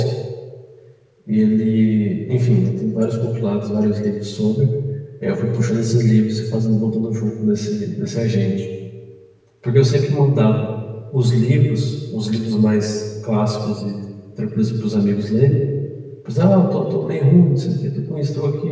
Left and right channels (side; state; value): both; identical; correlation 1.00